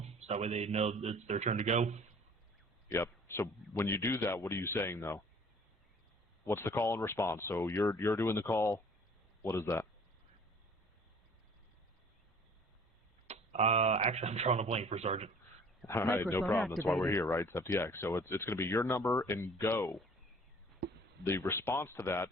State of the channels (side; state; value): both; normal; correlation 0.51